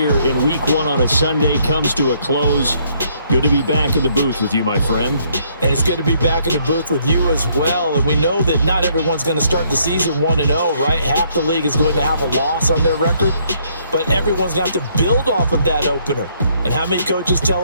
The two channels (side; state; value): both; inverted; correlation -0.68